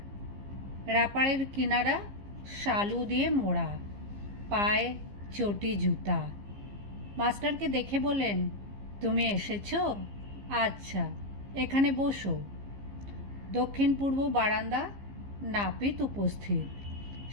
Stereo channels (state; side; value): late; left; 15 ms